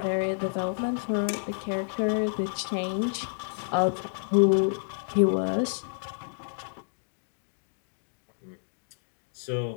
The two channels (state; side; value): silent; right; digital silence